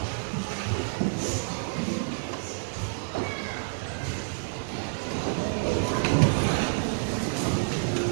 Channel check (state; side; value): silent; left; digital silence